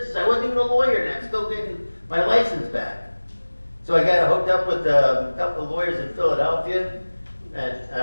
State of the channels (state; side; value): inverted; both; correlation -1.00